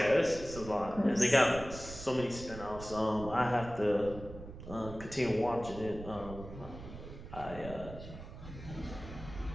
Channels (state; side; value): noise; right; rumble, 13 dB below the sound